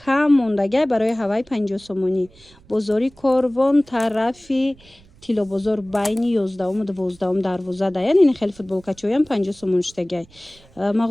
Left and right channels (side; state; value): right; noise; rumble, 27 dB below the sound